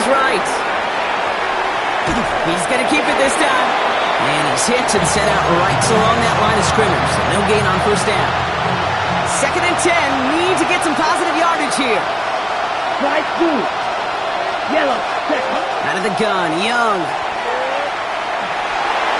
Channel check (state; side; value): identical; both; correlation 1.00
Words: right. He's going to keep it this time. And he's hit and set out right along that line of scrimmage. So no gain on 1st down. 2nd and 10, need to get some positive yardage here. Right through. Yellow. Second. Out of the gun, Young.